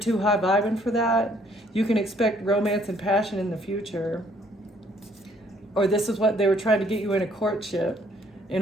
high vibing for that. You can expect romance and passion in the future. Or this is what they were trying to get you in a courtship in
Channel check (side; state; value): both; normal; correlation 0.64